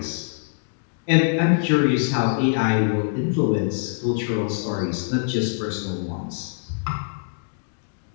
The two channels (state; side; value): silent; right; digital silence